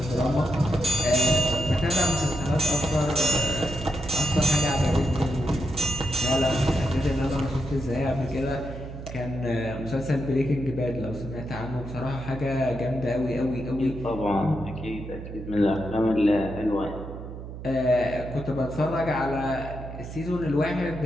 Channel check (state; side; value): noise; right; hum, 10 dB below the sound